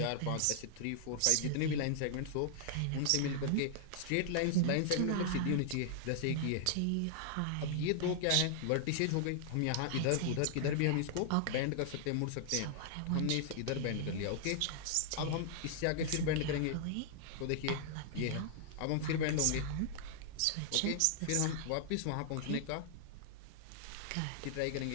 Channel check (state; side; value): different; both; correlation -0.01